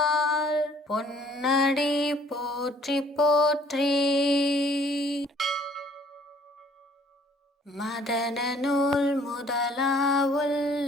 பொன்னடி போற்றி போற்றி. மதன நூல்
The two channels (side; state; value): both; normal; correlation 0.59